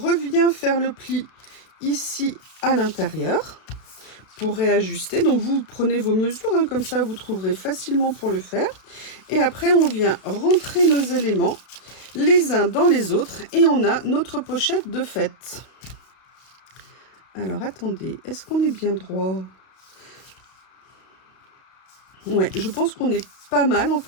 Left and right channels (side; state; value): right; late; 33 ms